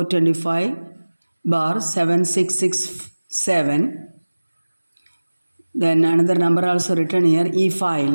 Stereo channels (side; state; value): both; inverted; correlation -1.00